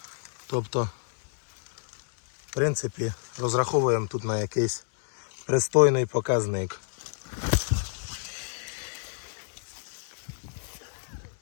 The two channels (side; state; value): right; silent; 59 dB below the other